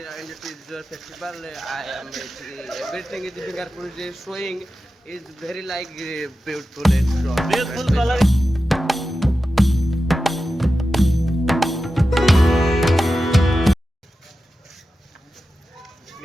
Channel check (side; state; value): both; normal; correlation 0.92